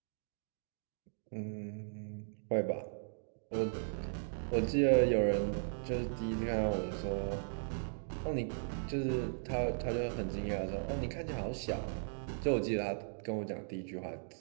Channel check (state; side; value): silent; left; digital silence